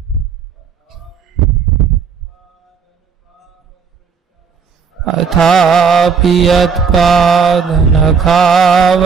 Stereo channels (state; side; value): quieter; left; 6.1 dB